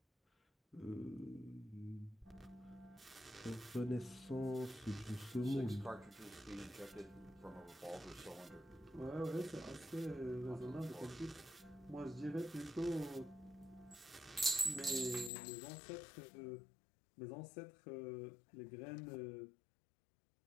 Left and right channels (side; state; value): right; drops out; at 15.3 s